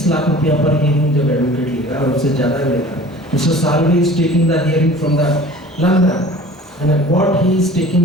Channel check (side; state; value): both; normal; correlation 0.44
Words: लाख रुपया पर हियरिंग जब एडवोकेट लेगा और उससे ज़्यादा भी लेगा, mister Salve is taking the hearing from the London and what he is